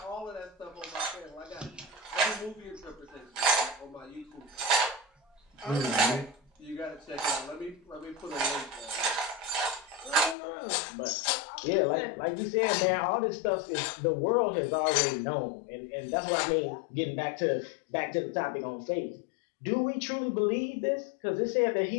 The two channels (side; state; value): right; drops out; at 10.4 s